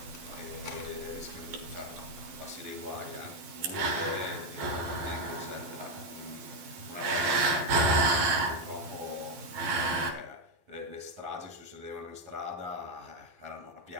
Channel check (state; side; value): late; left; 12 ms